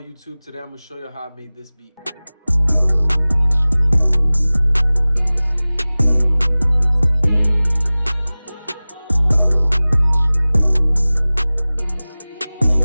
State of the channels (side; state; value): both; inverted; correlation -0.99